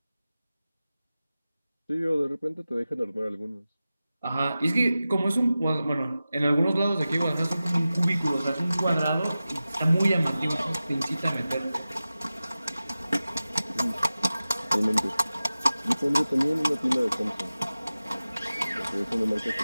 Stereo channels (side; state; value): both; inverted; correlation -0.95